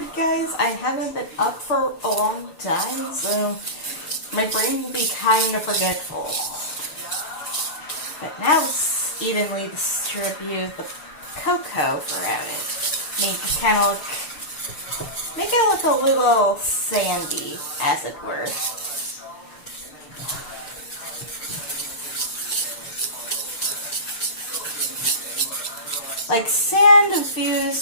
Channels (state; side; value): late; right; 6.5 ms